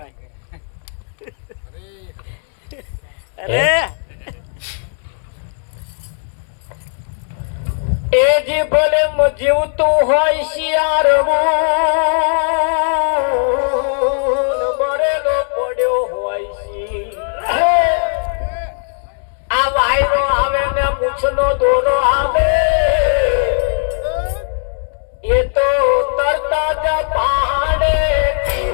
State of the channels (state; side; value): silent; right; 68 dB below the other